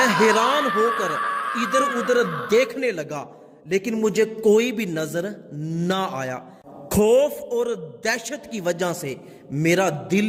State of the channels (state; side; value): identical; both; correlation 1.00